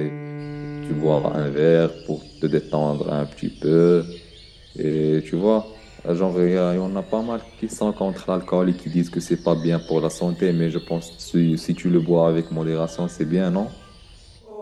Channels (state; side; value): identical; both; correlation 1.00